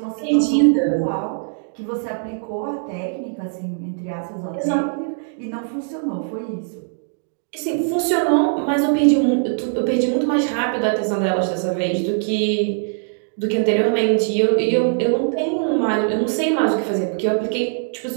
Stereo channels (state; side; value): silent; left; digital silence